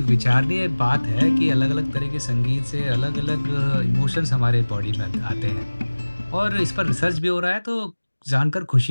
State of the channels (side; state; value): both; inverted; correlation -1.00